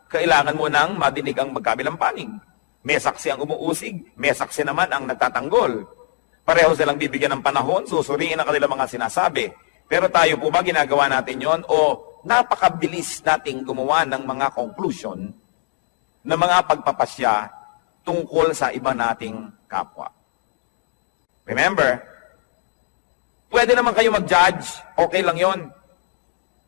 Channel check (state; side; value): silent; right; 65 dB below the other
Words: kailangan mo nang madinig ang magkabilang panig. May saksi ang umuusig, may saksi naman ang nagtatanggol. Pareho silang bibigyan ng panahon, susuriin ang kanilang mga sinasabi. Pero tayo po ba ginagawa natin yon o napakabilis nating gumawa ng mga conclusion na mga pagpapasya tungkol sa iba nating kapwa? Remember, pwede naman kayo mag-judge, okay lang yon.